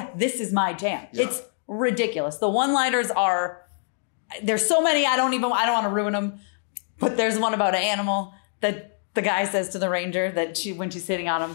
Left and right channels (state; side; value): silent; right; digital silence